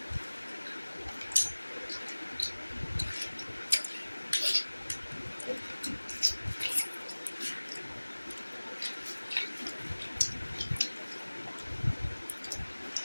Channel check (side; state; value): both; inverted; correlation -1.00